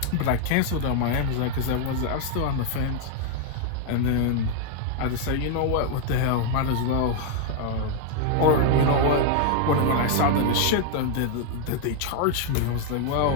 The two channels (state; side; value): different; both; correlation 0.00